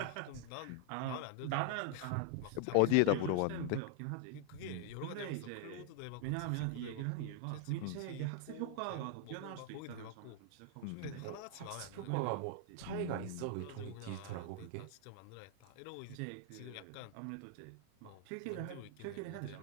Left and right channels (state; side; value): different; both; correlation 0.00